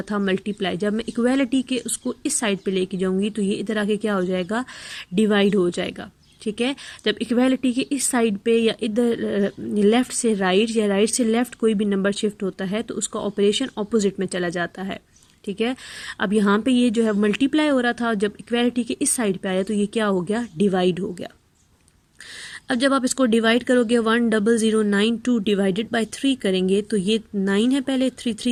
था, मल्टीप्लाई। जब मैं इक्वालिटी के उसको इस साइड पे लेके जाऊंगी तो ये इधर आके क्या हो जाएगा, डिवाइड हो जाएगा। ठीक है। जब इक्वालिटी के इस साइड पे या इधर लेफ्ट से राइट या राइट से लेफ्ट कोई भी नंबर शिफ्ट होता है तो उसका ऑपरेशन ऑपोजिट में चला जाता है। ठीक है। अब यहाँ पे ये जो है मल्टीप्लाई हो रहा था, जब इक्वालिटी के इस साइड पे आया तो ये क्या हो गया, डिवाइड हो गया। अब जब आप इसको डिवाइड करोगे 10092 डिवाइडेड बाय 3 करेंगे तो ये 9 है, पहले 3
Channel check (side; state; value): both; identical; correlation 1.00